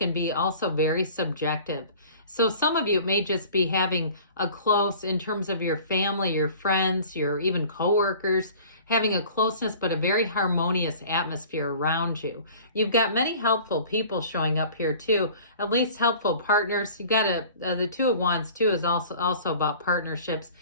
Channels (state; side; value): inverted; both; correlation -0.46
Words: be also very subjective. So some of you may just be having a close, in terms of your family, your friends, your even coworkers, having a closeness but a very harmonious atmosphere around you. You've got many helpful people showing up here too, at least helpful partners. You've got the Two of Wands too is also about partnerships.